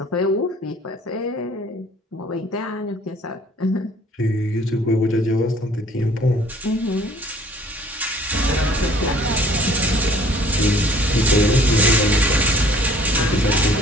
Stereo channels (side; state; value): both; normal; correlation 0.54